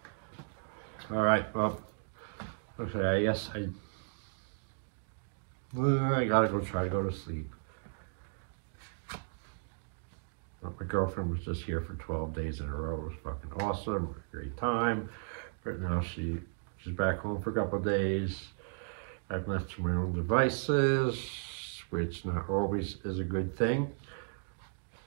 All right, well, okay, I guess I gotta try to go to sleep. My girlfriend was just here for 12 days in a row. It was fucking awesome, great time. But now she's back home for a couple of days. I've left to my own devices, which not always is a good thing.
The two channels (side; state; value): left; silent; digital silence